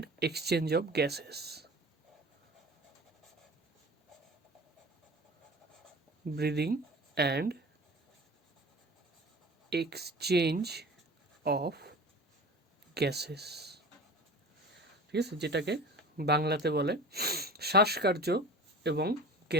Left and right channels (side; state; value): both; normal; correlation 0.37